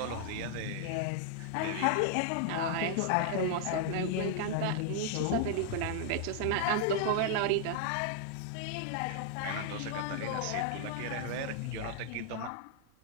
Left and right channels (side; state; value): both; different; correlation -0.01